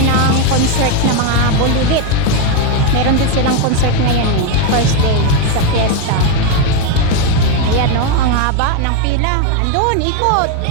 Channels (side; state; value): both; different; correlation 0.02